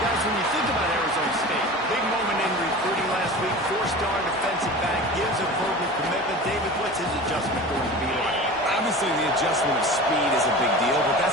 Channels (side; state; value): both; normal; correlation 0.35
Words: when you think about Arizona State, big moment in recruiting last week, 4-star defensive back, gives a verbal commitment. David, what's his adjustment going to be like? Obviously, the adjustment of speed is a big deal, but